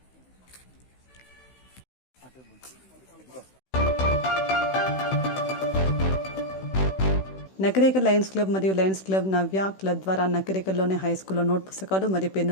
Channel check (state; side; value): late; right; 16 ms